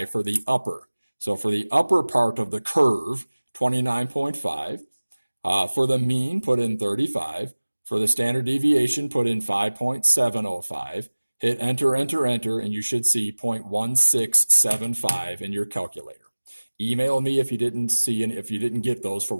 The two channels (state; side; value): inverted; both; correlation -1.00